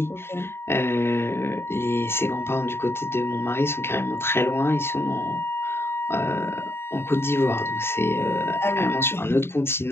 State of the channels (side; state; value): right; late; 0.11 ms